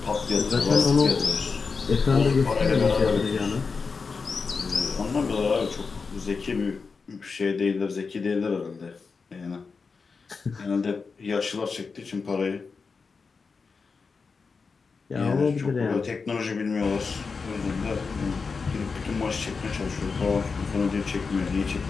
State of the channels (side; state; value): right; quieter; 4.9 dB